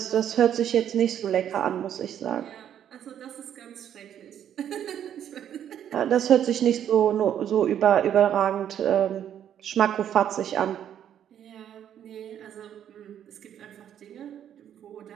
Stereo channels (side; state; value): left; quieter; 9.9 dB